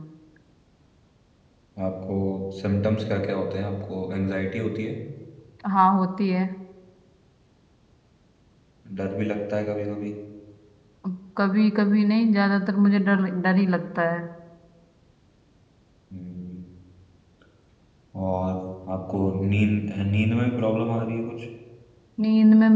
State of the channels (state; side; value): identical; both; correlation 1.00